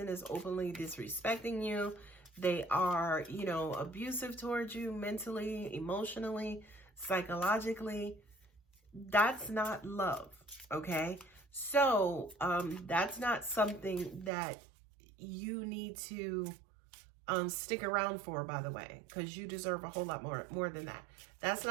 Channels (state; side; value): drops out; left; at 14.3 s